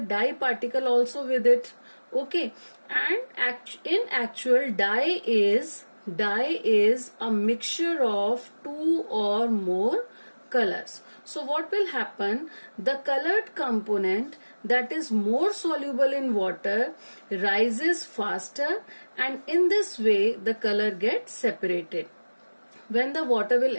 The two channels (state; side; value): inverted; both; correlation -1.00